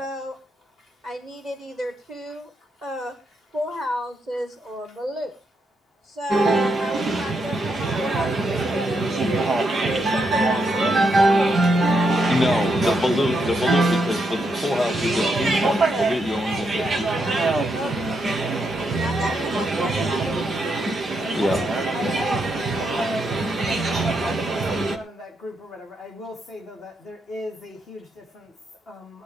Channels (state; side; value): normal; both; correlation 0.80